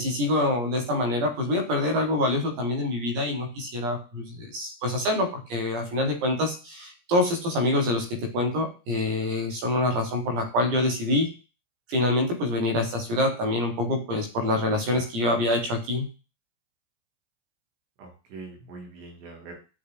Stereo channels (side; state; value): left; late; 17 ms